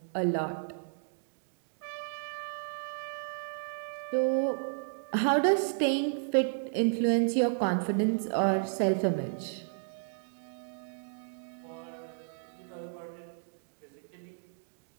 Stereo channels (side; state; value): left; silent; digital silence